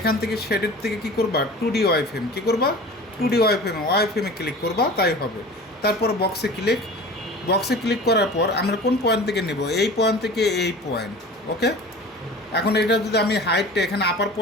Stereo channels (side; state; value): both; normal; correlation 0.39